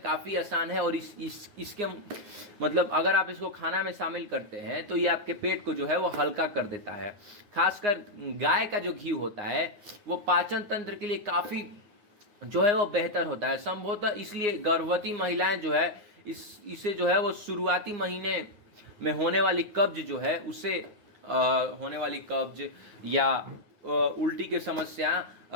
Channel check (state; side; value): late; left; 9.4 ms